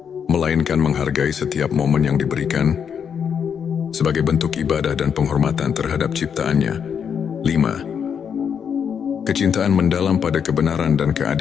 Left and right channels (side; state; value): right; quieter; 7.4 dB